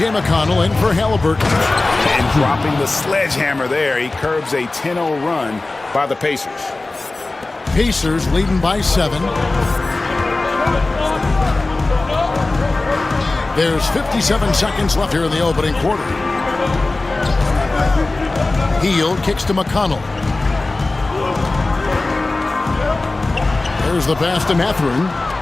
McConnell in for Halliburton. And dropping the sledgehammer there, he curbs a 10-0 run by the Pacers. Pacers leading by 7. There's 57 seconds left here in the opening quarter. Hield kicks to McConnell. Here's the pass to Mathurin.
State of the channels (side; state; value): right; quieter; 3.2 dB